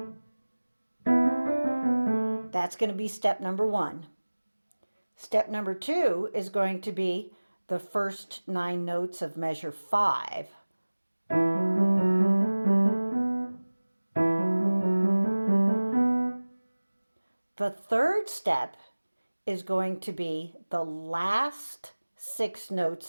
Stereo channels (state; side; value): inverted; both; correlation -1.00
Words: That's going to be step number 1. Step number 2 is going to be the first 9 notes of measure 5. The third step is going to be the last 6